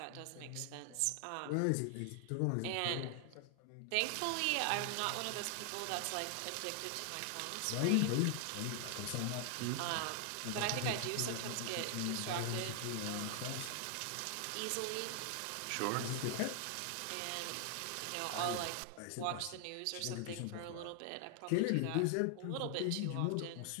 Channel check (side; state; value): both; different; correlation 0.00